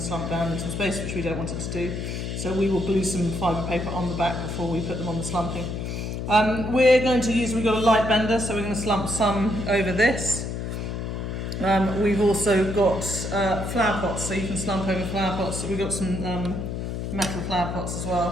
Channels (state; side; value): noise; left; hum, 4 dB below the sound